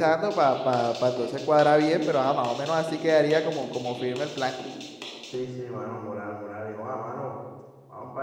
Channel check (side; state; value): both; identical; correlation 1.00